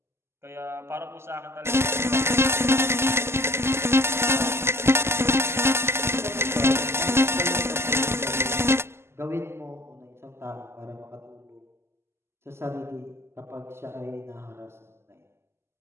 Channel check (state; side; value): late; left; 0.12 ms